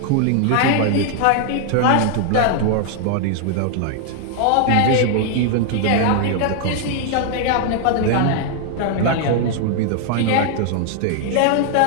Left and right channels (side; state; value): both; different; correlation 0.00